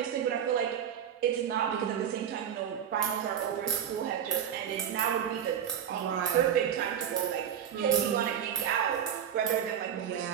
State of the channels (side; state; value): left; quieter; 9.0 dB